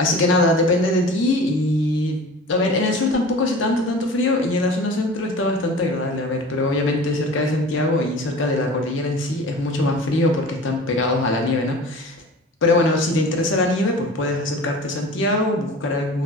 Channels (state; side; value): normal; both; correlation 0.39